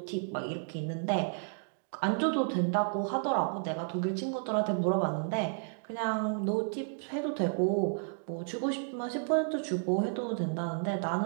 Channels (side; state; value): left; silent; digital silence